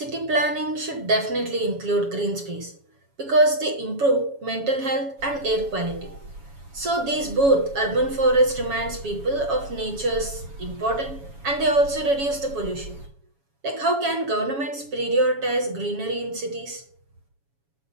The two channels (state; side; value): late; left; 7.2 ms